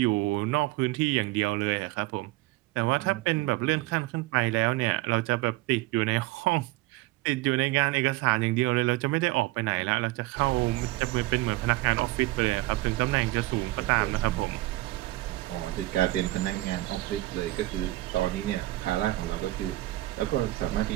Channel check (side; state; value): left; quieter; 18.7 dB